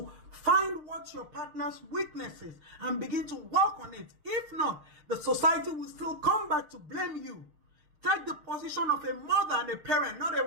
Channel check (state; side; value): late; left; 6.6 ms